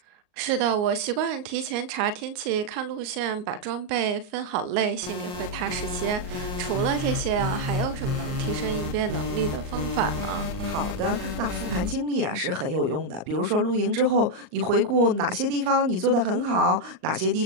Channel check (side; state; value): left; late; 38 ms